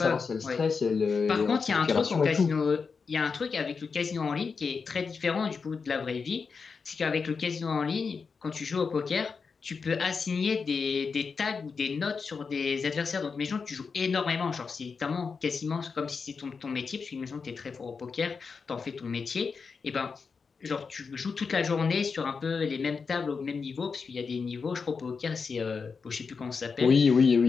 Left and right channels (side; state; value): right; quieter; 5.2 dB